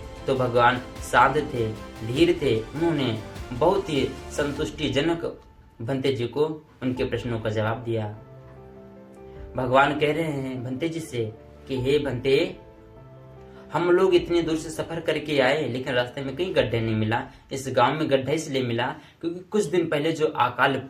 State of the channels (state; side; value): identical; both; correlation 1.00